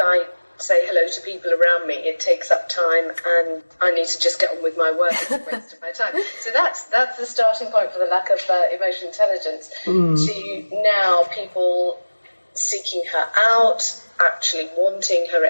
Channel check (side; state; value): both; inverted; correlation -1.00